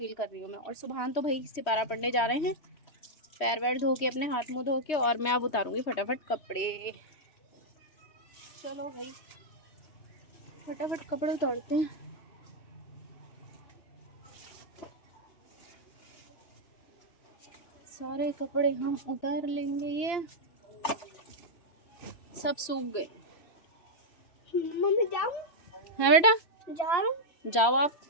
कर रही हूँ मैं। और सुबह तो भाई सिपारा पढ़ने जा रहे हैं, पैर वैर धो के, अपने हाथ मुँह धो के, और मैं अब उतारूँगी फटाफट कपड़े। चलो भाई फटाफट कपड़े उतारते हैं। सारे कपड़े हम उतार लेंगे। ये सब सूख गए। मम्मी जाऊं? है बेटा, जाऊं? जाओ आप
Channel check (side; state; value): right; late; 3.0 ms